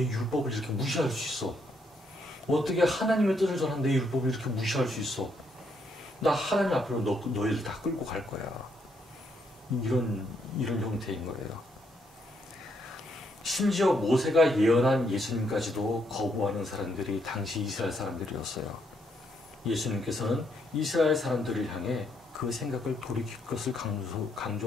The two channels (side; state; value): both; normal; correlation 0.74